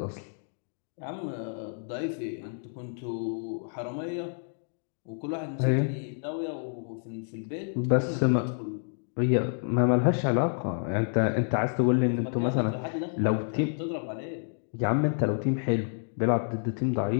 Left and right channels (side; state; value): right; silent; digital silence